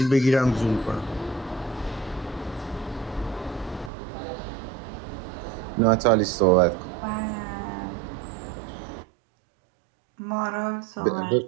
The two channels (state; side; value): drops out; left; at 3.9 s